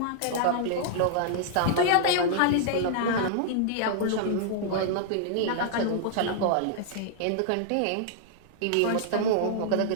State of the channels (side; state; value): both; different; correlation -0.01